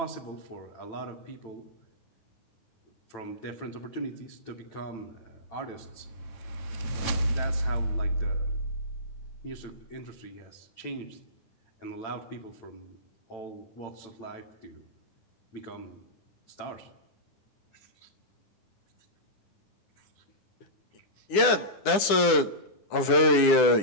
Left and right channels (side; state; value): right; late; 9.8 ms